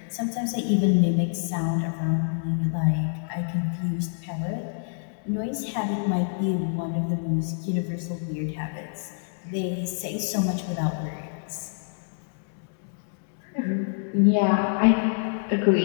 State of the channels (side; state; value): right; silent; digital silence